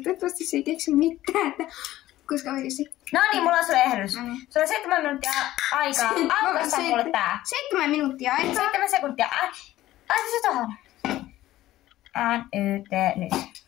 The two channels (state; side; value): quieter; right; 15.0 dB